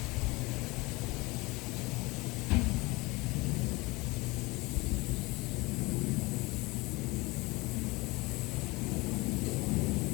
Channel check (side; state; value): right; quieter; 23.5 dB